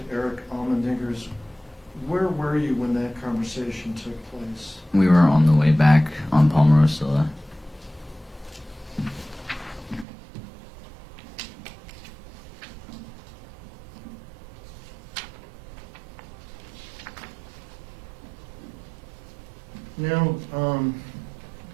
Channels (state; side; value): drops out; left; at 10.1 s